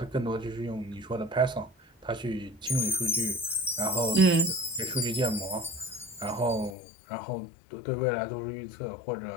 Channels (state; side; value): drops out; right; at 6.8 s